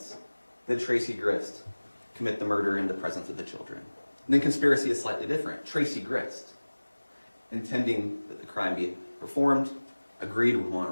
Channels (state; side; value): inverted; both; correlation -1.00